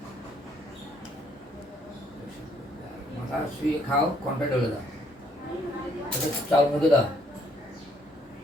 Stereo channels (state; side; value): normal; both; correlation 0.67